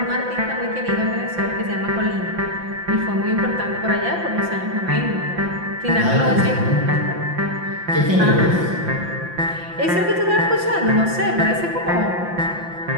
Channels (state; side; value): late; left; 5.8 ms